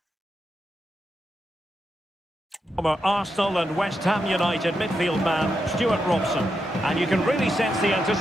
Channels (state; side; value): normal; both; correlation 0.85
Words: Arsenal and West Ham United midfield man, Stuart Robson. And you can really sense the